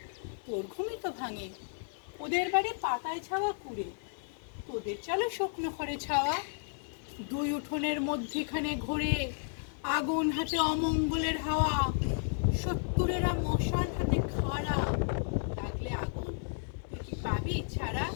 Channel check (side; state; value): right; silent; digital silence